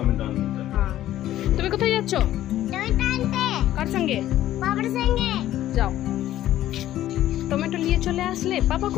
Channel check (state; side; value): quieter; right; 13.3 dB